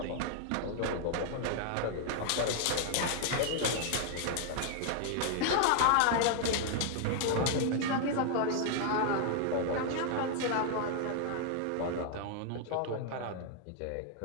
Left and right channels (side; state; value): both; different; correlation 0.00